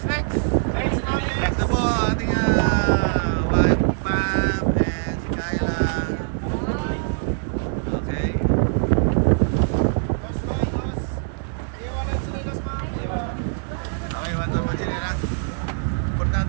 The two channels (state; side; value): silent; left; digital silence